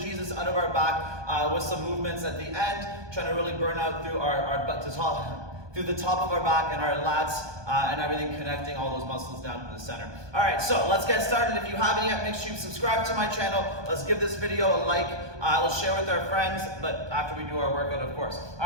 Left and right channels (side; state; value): left; late; 1.2 ms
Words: out of our back with some movements at the end, trying to really burn out through our butt to top. Through the top of our back and our lats and everything, connecting all those muscles down to the center. All right, so let's get started. If you haven't yet, make sure you subscribe to my channel. Let's give this video a like. Let's share with our friends, but after we do our workout, of course.